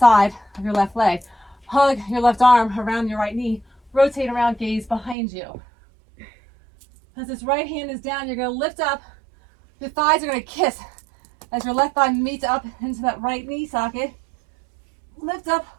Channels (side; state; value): left; drops out; at 5.2 s